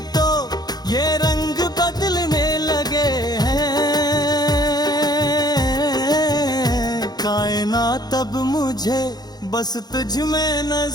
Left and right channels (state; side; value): late; right; 0.19 ms